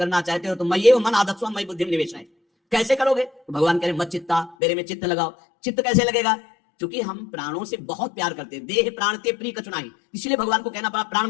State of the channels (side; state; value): right; drops out; at 4.5 s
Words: चाहते हो तो मैं ये मन आदत्स्व मई बुद्धि निवेश है। कैसे करोगे? तो भगवान कह रहे मत चित्ता, मेरे में चित्त लगाओ। चित्त कैसे लगेगा? क्योंकि हम प्राणों से बहुत प्यार करते हैं, देह प्राण ते प्रिय कचुनाई, इसलिए भगवान को कहना पड़ा प्राण